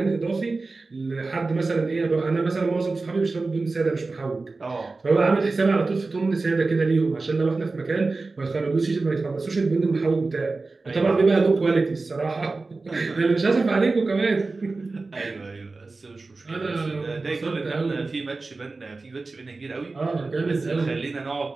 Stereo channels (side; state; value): left; quieter; 3.7 dB